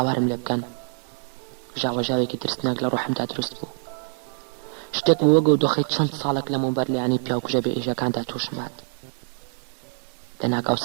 لێ بکەن ژاوەژاوێکی ترسناک لە ڕوحمدا دروست بوو شتێک بوو وەگە و دۆخەی چەند ساڵێک لەمەوبەر لەیانی پیاوکوژە بێ ئێژەکاندا تووشمات لەناکاو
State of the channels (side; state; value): left; silent; digital silence